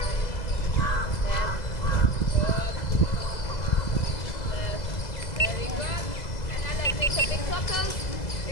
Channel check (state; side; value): late; right; 2.0 ms